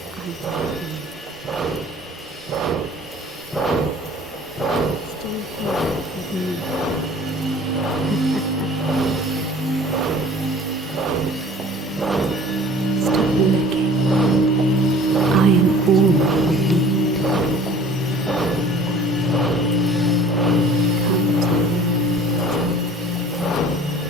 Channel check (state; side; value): normal; both; correlation 0.48